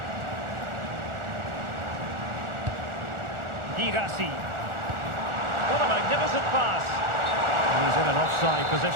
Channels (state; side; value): late; left; 1.4 ms